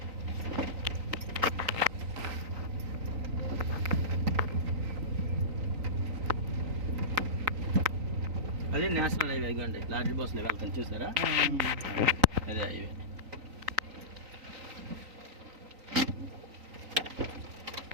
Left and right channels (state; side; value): late; left; 3.9 ms